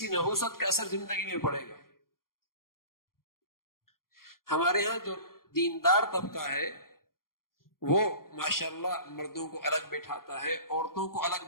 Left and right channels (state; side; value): late; right; 0.92 ms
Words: نحوست کا اثر زندگی میں پڑے گا۔ ہمارے ہاں جو دیندار طبقہ ہے وہ ماشاءاللہ مردوں کو الگ بٹھاتا ہے، عورتوں کو الگ